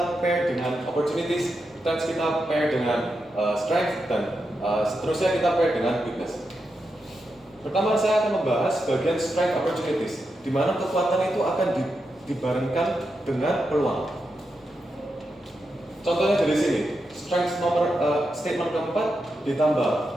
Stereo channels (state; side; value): normal; both; correlation 0.86